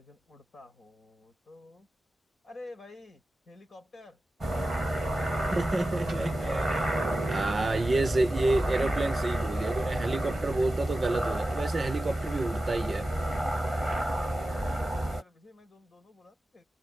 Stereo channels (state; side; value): normal; both; correlation 0.94